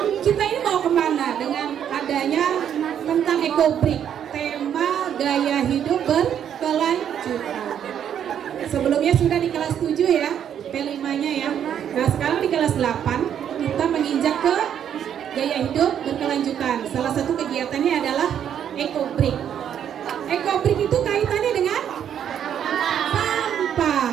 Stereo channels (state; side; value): quieter; left; 9.2 dB